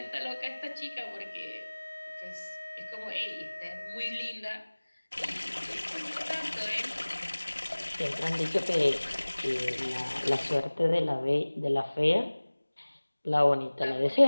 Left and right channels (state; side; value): inverted; both; correlation -1.00